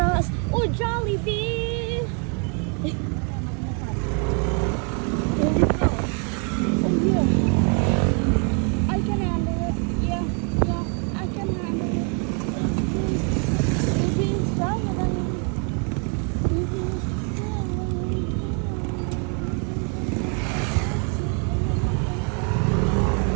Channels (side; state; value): left; quieter; 38.5 dB